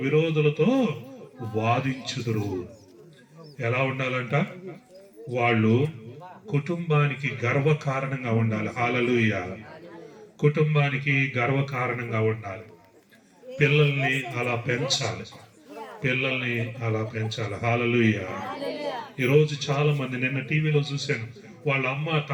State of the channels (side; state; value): both; identical; correlation 1.00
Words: విరోధులతో వాదించుదురు. ఎలా ఉండాలంట? వాళ్ళు కుటుంబానికి గర్వకారణంగా ఉండాలి. హల్లెలూయా. కుటుంబానికి గర్వకారణంగా ఉండాలి. పిల్లల్ని అలా పెంచాలి. హల్లెలూయా. ఈరోజు చాలా మంది, నిన్న టీవీలో చూశాను, వాళ్ళ అమ్మ